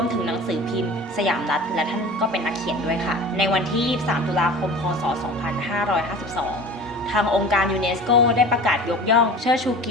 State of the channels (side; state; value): both; normal; correlation 0.38